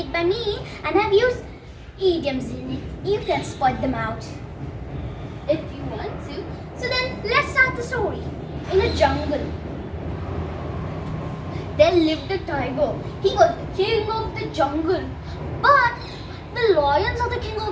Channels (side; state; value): both; identical; correlation 1.00